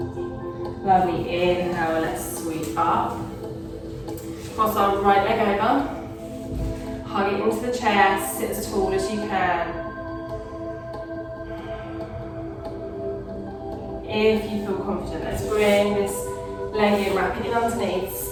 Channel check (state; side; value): identical; both; correlation 1.00